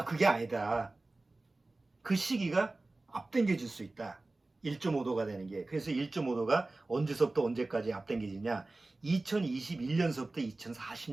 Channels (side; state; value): left; quieter; 3.1 dB